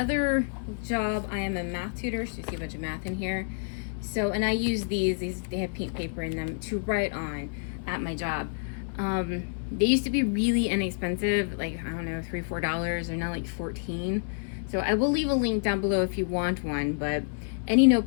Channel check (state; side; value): silent; right; 59 dB below the other